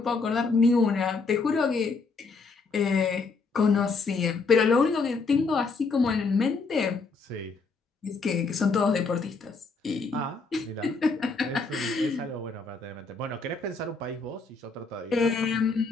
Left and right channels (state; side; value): quieter; right; 4.2 dB